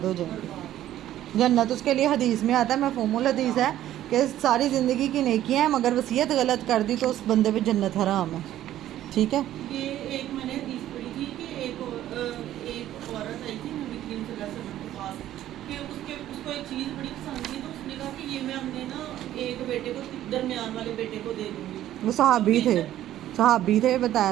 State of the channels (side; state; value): left; quieter; 12.8 dB